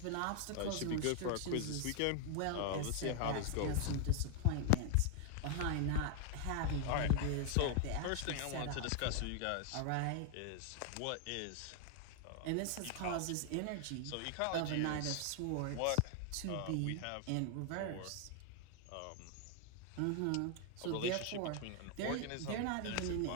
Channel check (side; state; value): both; different; correlation 0.00